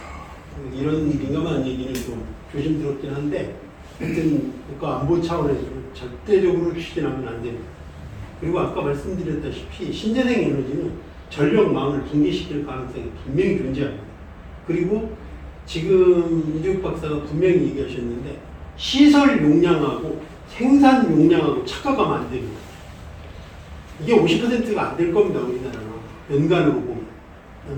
이런 민감한 얘기는 좀 조심스럽긴 한데 하여튼 국가안보 차원에서 절대적으로 추진하면 안 됩니다. 그리고 아까 말씀드렸다시피 신재생 에너지는 전력망을 붕괴시킬 가능성이 분명히 존재합니다. 그리고 지금 이재욱 박사가 분명히 얘기하셨는데 시설 용량하고 생산 용량하고 착각하면 안 됩니다. 이게 50%가 안 될 겁니다. 우리나라는 연간으로 보면.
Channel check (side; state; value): both; identical; correlation 1.00